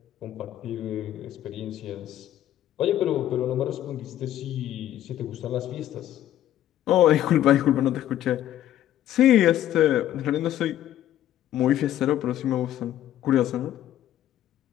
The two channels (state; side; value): quieter; right; 12.2 dB